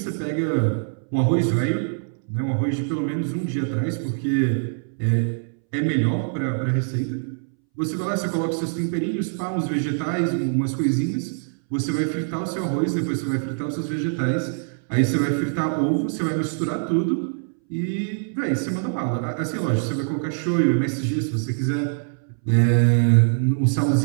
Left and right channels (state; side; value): silent; left; 63 dB below the other